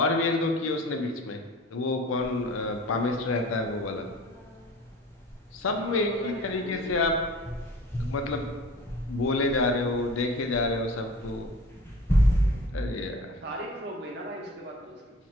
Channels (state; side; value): normal; both; correlation 0.41